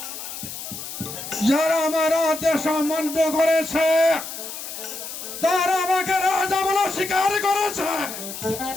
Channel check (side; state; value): left; noise; hiss, 9 dB below the sound